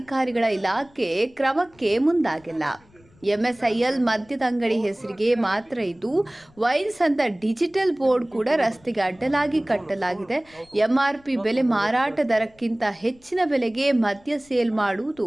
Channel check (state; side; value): noise; left; rumble, 29 dB below the sound